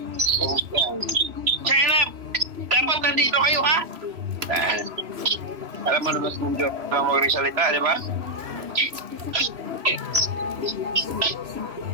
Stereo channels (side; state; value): left; late; 3.0 ms